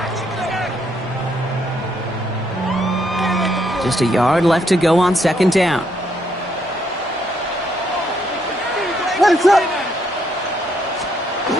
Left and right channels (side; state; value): both; normal; correlation 0.73